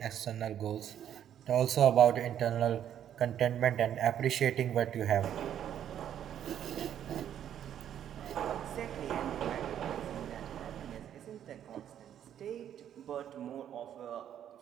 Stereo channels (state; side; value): quieter; left; 10.1 dB